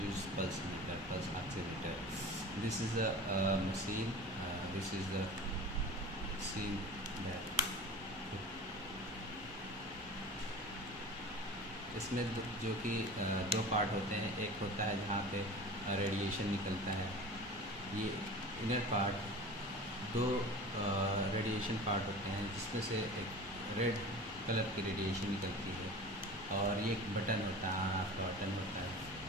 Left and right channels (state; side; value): normal; both; correlation 0.36